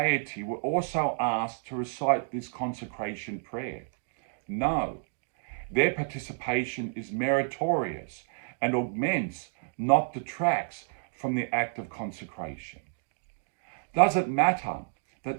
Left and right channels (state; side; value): silent; left; digital silence